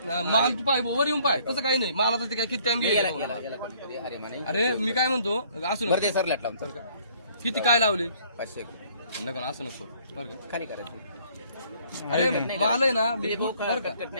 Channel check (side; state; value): both; inverted; correlation -0.60